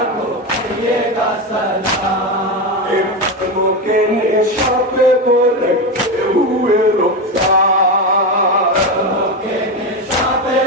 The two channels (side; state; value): both; normal; correlation 0.15